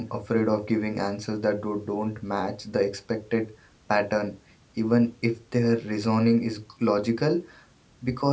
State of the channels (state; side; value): identical; both; correlation 1.00